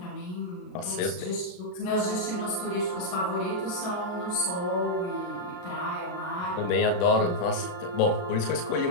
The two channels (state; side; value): late; right; 36 ms